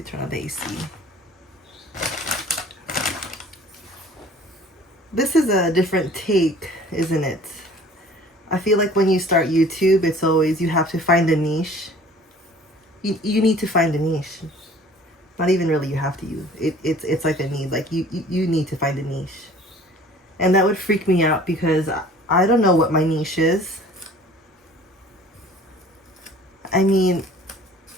turn on the AC. This is a different take, isn't it? I feel like when you start YouTube, it's always you have to find a niche. You need to find a niche. Not even really you have to. It's like a need. Like you need to find a niche. And that would freak me out because I don't know what my niche is. I mean,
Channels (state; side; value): normal; both; correlation 0.49